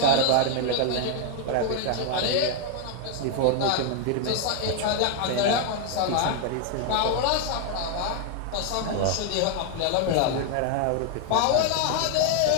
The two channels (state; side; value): different; both; correlation 0.00